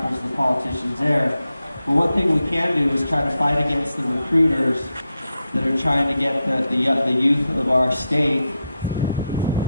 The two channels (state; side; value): inverted; both; correlation -0.87